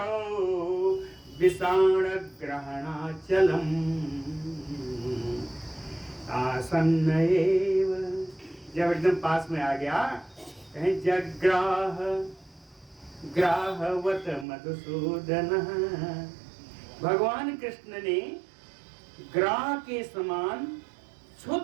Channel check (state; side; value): drops out; left; at 14.5 s